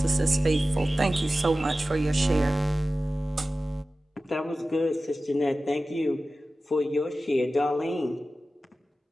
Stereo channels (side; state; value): both; normal; correlation 0.96